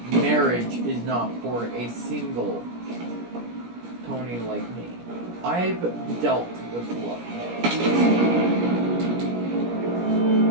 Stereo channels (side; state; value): left; late; 17 ms